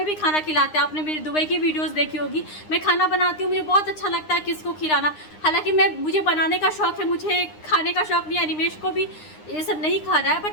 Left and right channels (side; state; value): right; late; 9.7 ms